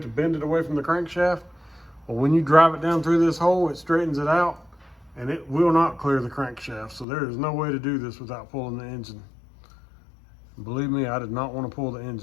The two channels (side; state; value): right; drops out; at 7.1 s